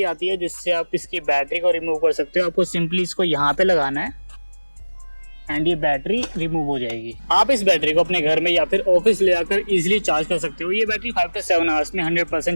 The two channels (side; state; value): both; inverted; correlation -1.00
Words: आती है जिससे आप इसकी बैटरी को रिमूव कर सकते हो। आपको सिंपली इसको यहाँ पे लगाना है एंड ये बैटरी रिमूव हो जाएगी। आप इस बैटरी को अपने घर में या फिर ऑफिस ले आकर इजीली चार्ज कर सकते हो। ये बैटरी 5 से 7 आवर्स में